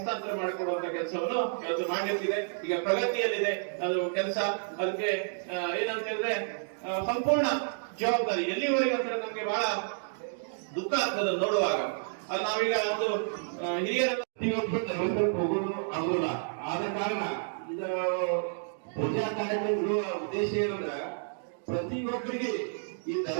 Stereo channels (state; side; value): silent; left; digital silence